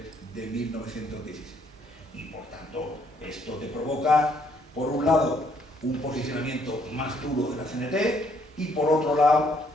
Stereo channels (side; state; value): both; normal; correlation 0.68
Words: de 1917. Y por tanto, esto te provoca, por un lado, un posicionamiento más duro de la CNT, y por otro lado,